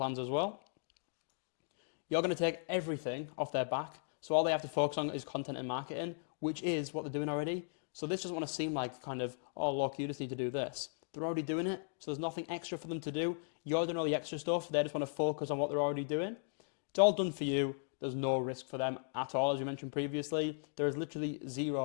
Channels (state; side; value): silent; right; digital silence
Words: as well. You're going to take everything off their back, so all they have to focus on is content and marketing, which is what they're doing already. So this doesn't want to seem like kind of, oh look, you just need to do this. They're already doing it, so there's nothing extra for them to do. You're doing all the extra stuff, they just want to focus on what they're already doing. It's all done for you. There's no risk for them at all, as we mentioned previously. There is literally